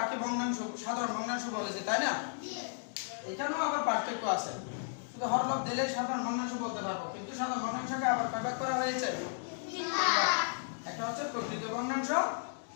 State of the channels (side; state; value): right; silent; digital silence